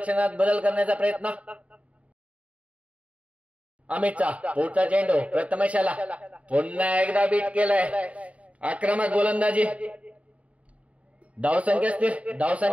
बदल करण्याचा प्रयत्न अमितचा. पुढचा चेंडू प्रथमेशाला पुन्हा एकदा बीट केलाय. आक्रमक गोलंदाजी. धावसंख्या स्थिर.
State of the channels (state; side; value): late; left; 0.066 ms